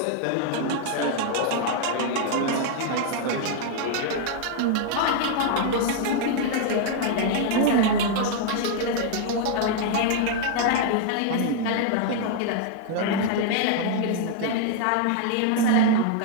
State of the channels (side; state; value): both; different; correlation 0.00